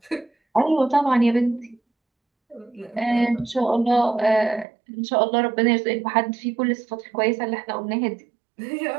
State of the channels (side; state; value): left; drops out; at 4.7 s